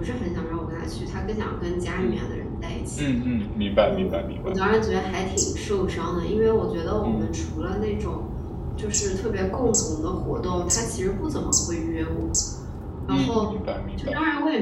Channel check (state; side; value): identical; both; correlation 1.00